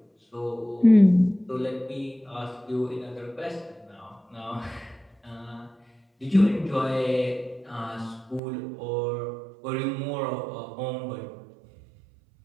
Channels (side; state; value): left; drops out; at 8.4 s